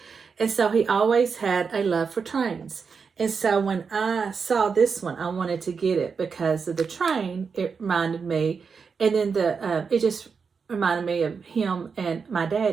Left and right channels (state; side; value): quieter; left; 5.6 dB